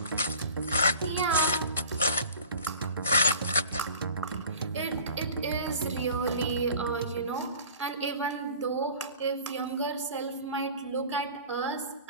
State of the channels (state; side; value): inverted; both; correlation -0.43